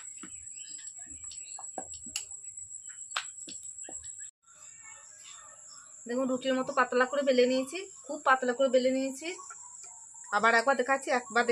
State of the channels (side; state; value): both; identical; correlation 1.00